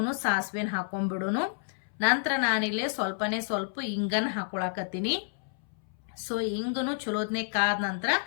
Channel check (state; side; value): silent; right; 58 dB below the other